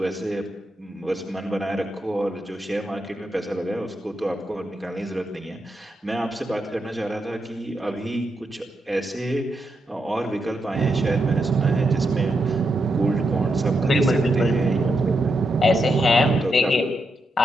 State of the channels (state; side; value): normal; both; correlation 0.83